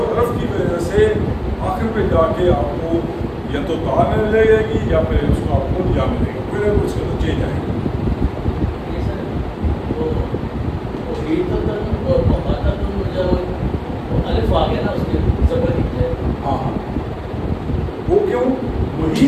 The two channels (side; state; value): both; identical; correlation 1.00